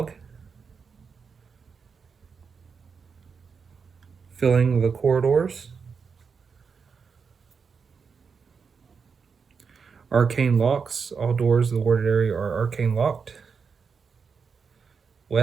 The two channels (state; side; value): quieter; left; 5.7 dB